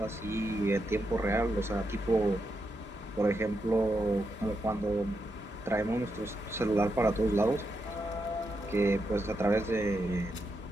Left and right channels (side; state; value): both; normal; correlation 0.84